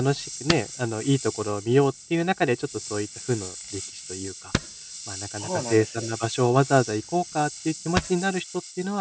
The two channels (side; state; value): both; identical; correlation 1.00